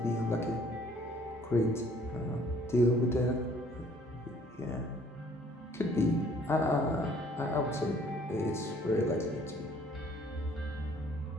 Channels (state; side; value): normal; both; correlation 0.58